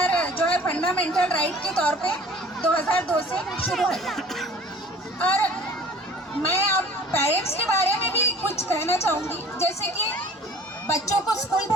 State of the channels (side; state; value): both; normal; correlation 0.48